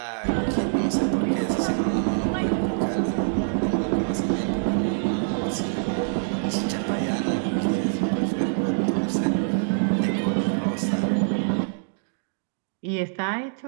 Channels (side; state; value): left; silent; digital silence